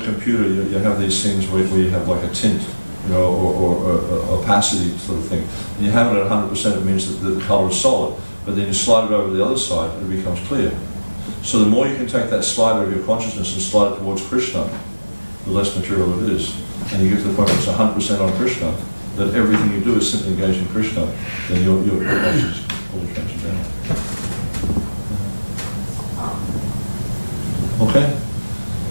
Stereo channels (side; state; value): both; inverted; correlation -1.00